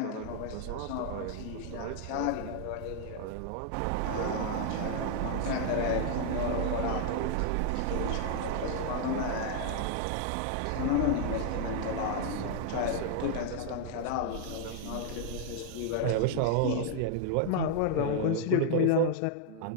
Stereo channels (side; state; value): both; different; correlation 0.00